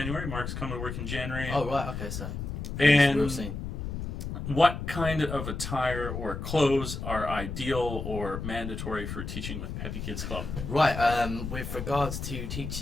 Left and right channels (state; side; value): noise; left; rumble, 6 dB below the sound